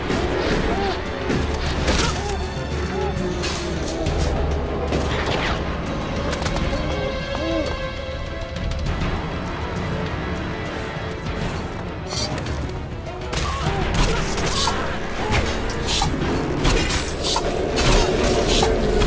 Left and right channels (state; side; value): identical; both; correlation 1.00